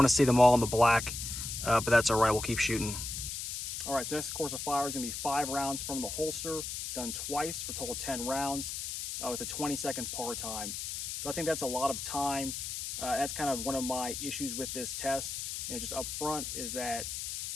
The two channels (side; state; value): left; noise; hiss, 5 dB below the sound